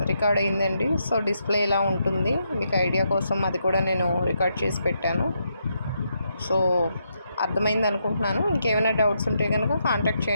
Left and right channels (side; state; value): both; inverted; correlation -0.80